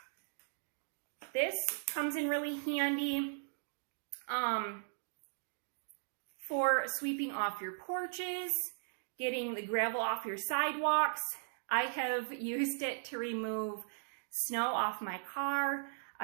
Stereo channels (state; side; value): silent; left; digital silence